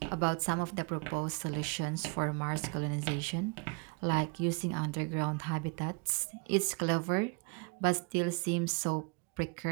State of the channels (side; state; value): left; quieter; 32.1 dB